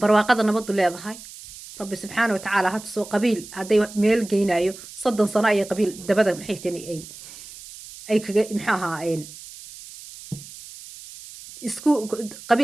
barwaaqada nabaddu leedahay rabbi subxaana watacaala ha tusoo qabiil hadday meel geynayo 30 sano ayay qabiil dabada maxay tani ay kaga maxaa ahaa isku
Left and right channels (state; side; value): noise; right; hiss, 16 dB below the sound